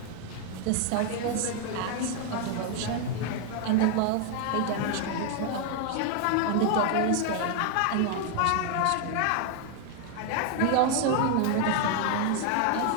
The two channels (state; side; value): different; both; correlation 0.01